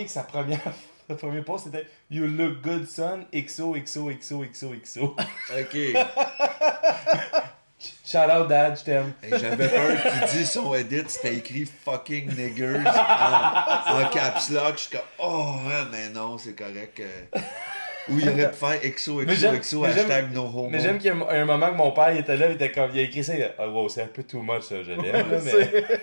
que le premier post c'était You look good, son, XOXOXOXOXO. OK. Shout out, dad, je t'aime. Et j'avais peur qu'il dise son edit, c'était écrit fucking niggers en caps lock. Je suis comme, oh, ouais, mais non, c'est correct. Ou il aurait pu faire XOXOXO hashtag no homo. Mais j'aime qu'il y a un moment que mon père il était là, il était comme, il a écrit ça, il a dit, oh, wow, c'est un peu too much ça, je l'aime, là, mais...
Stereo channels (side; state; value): both; inverted; correlation -1.00